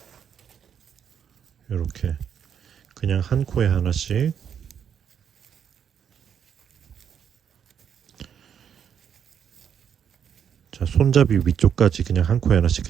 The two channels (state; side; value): quieter; left; 8.2 dB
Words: 이렇게 그냥 한 코에 하나씩. 자, 손잡이 위쪽까지 그냥 한 코에 하나씩